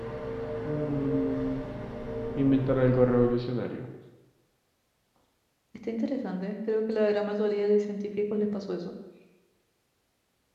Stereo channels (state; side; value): identical; both; correlation 1.00